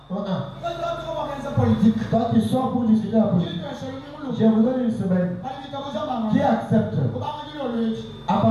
Toi tu sors pour discuter la politique. Je vous donne une semaine. Qui accepte? À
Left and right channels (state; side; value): identical; both; correlation 1.00